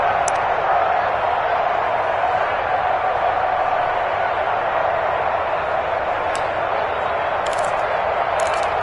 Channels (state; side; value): identical; both; correlation 1.00